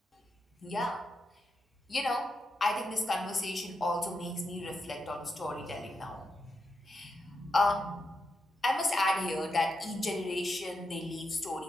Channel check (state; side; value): normal; both; correlation 0.85